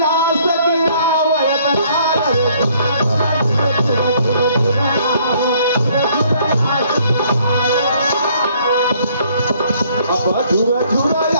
से गिरावत अब झुरा झुरा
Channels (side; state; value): both; inverted; correlation -0.63